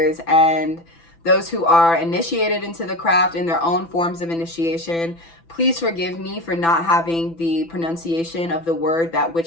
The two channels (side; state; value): right; late; 6.0 ms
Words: and those who are initiated into the craft in their own forms of initiation. Please forgive me for not having the pronunciation of the word that